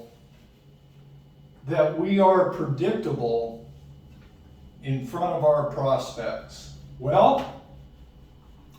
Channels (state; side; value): identical; both; correlation 1.00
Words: that we are predictable in front of our prospects? Well,